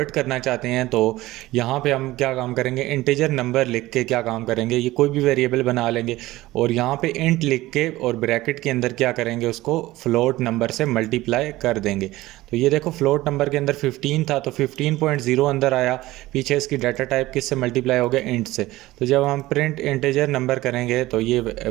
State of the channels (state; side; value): quieter; left; 17.7 dB